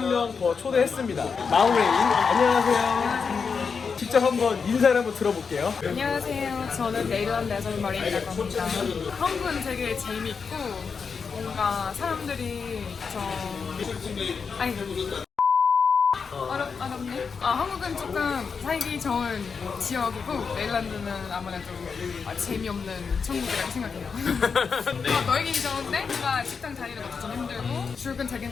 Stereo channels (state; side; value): quieter; right; 5.6 dB